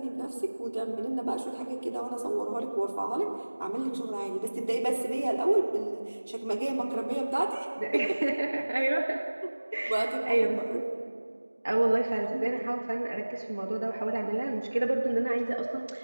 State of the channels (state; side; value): inverted; both; correlation -1.00